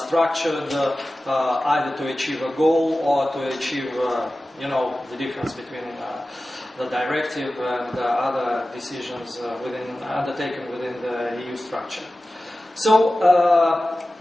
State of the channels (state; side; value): normal; both; correlation 0.95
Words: either to achieve a goal or to achieve the difference between the directive and other decisions undertaken within the EU structure. So